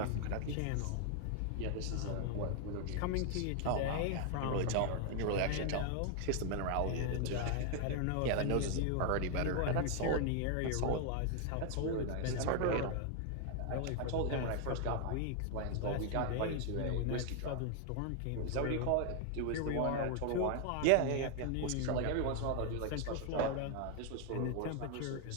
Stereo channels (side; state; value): both; different; correlation 0.00